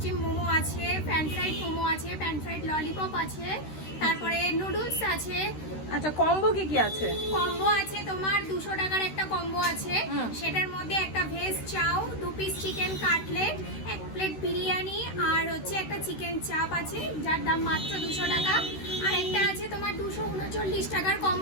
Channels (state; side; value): late; right; 13 ms